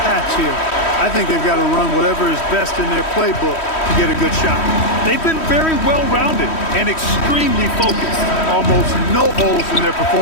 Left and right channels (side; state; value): right; late; 3.1 ms